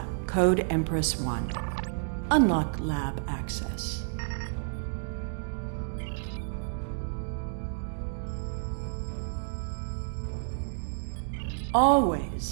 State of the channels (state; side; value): silent; left; digital silence